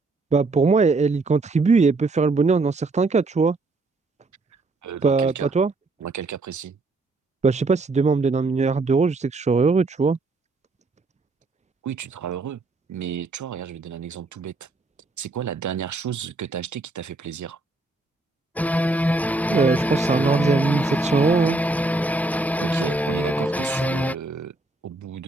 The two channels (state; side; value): quieter; left; 3.2 dB